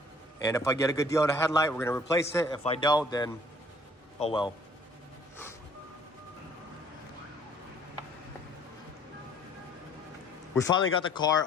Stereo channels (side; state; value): both; normal; correlation 0.57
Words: And if I get a good deal on a headlight, we're gonna replace it. If I don't, then oh well. We finally got the car